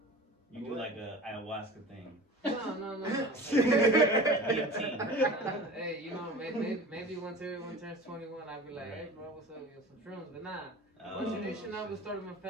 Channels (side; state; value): both; normal; correlation 0.37